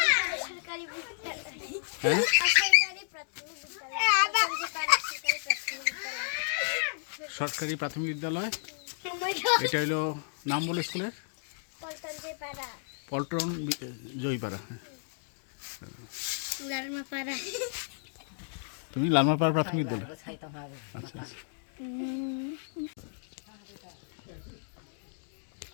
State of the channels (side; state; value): right; silent; digital silence